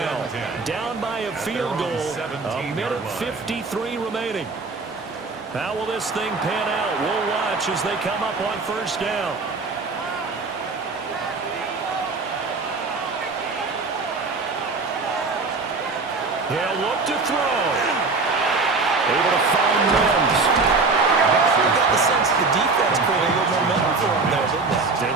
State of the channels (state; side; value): quieter; left; 4.0 dB